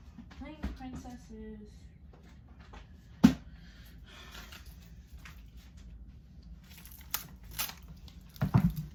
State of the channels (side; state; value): both; identical; correlation 1.00